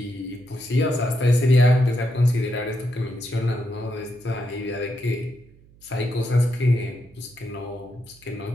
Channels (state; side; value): noise; right; hum, 27 dB below the sound